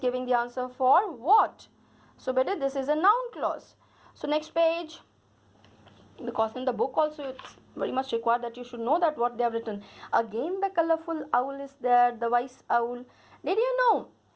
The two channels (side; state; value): both; identical; correlation 1.00